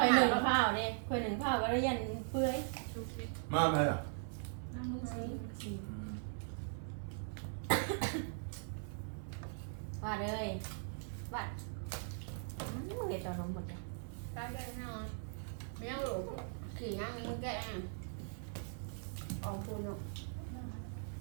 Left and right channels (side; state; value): left; silent; 51 dB below the other